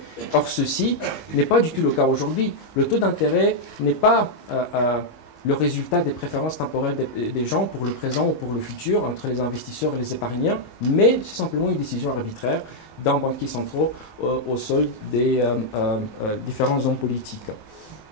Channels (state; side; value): late; right; 19 ms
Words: Or, ceci n'est pas du tout le cas aujourd'hui. Le taux d'intérêt n'est pas le résultat des préférences temporelles des gens pour le présent ou pour le futur entre les investisseurs et les épargnants, mais c'est simplement une décision arbitraire d'un banquier central au solde des différents hommes politiques.